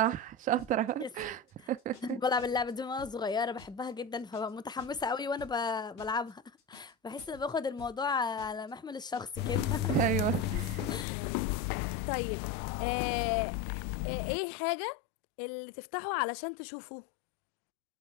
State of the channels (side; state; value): right; drops out; at 11.1 s